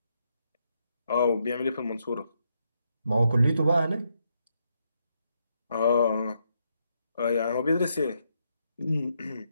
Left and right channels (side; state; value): both; inverted; correlation -0.78